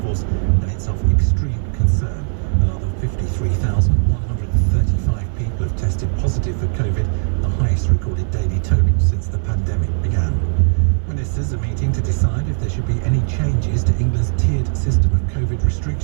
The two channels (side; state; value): left; silent; 67 dB below the other